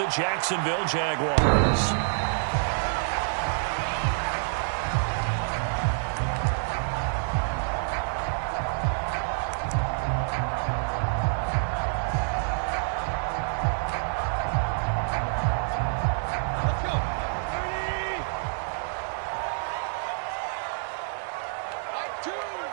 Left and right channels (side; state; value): left; silent; digital silence